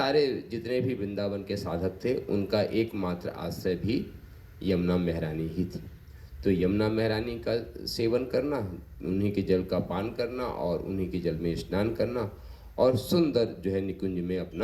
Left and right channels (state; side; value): identical; both; correlation 1.00